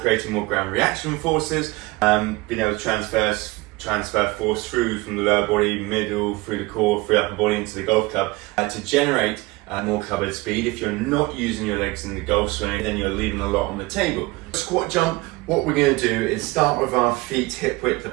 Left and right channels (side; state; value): left; quieter; 21.9 dB